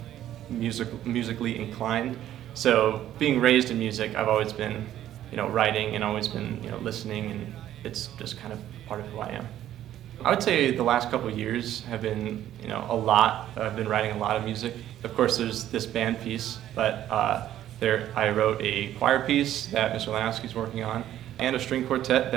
musically inclined. So being raised in music, I've always been, writing and always been, listening, and it's just kind of part of who I am. I would say the last couple of years have been, a lot. I've been writing a lot of music. Of course, there's this band piece, but I wrote a choir piece that Mr. Lanowski's working on, and a string quartet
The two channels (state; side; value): quieter; left; 12.2 dB